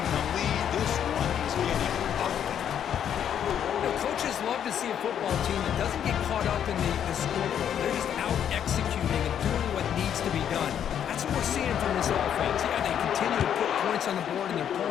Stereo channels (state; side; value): quieter; right; 9.2 dB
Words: the lead. This one is getting ugly. You know, coaches love to see a football team that doesn't get caught up in the scoreboard. They're just out executing and doing what needs to be done. That's what we're seeing from this offense. Yeah, they continue to put points on the board and they're